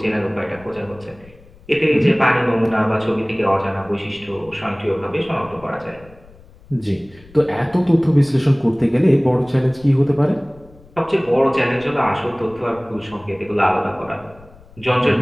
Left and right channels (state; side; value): noise; left; rumble, 24 dB below the sound